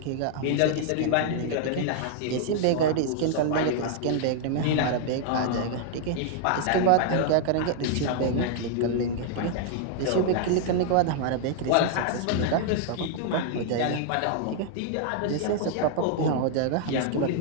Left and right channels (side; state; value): both; different; correlation 0.00